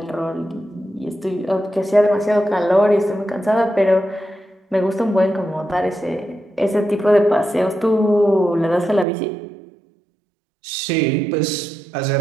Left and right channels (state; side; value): drops out; left; at 9.1 s